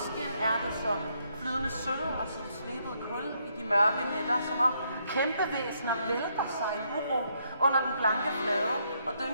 er det som flydende sølv og som slebet kul i de mørke nætter, som om kæmpevæsener vælter sig i uro under den blanke flade og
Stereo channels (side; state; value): both; inverted; correlation -0.74